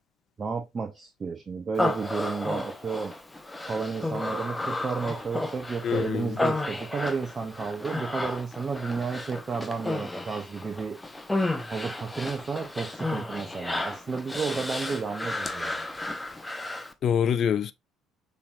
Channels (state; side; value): normal; both; correlation 0.82